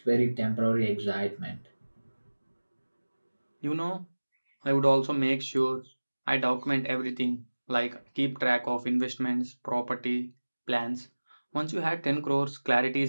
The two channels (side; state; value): both; inverted; correlation -1.00